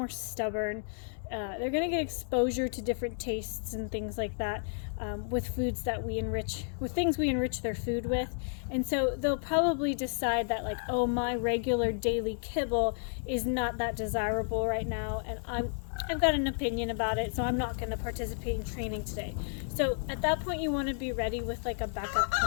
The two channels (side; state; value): right; silent; 56 dB below the other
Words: stubborn. They're going to get exposure to different tastes and things like that with foods that we enrich, with things we enrich their food with. And so they'll probably decide that, like, oh, my regular daily kibble is not that desirable right now, and I've got an opinion about it, so I'm not going to participate in training today. So at that point, you want to be ready with like a backup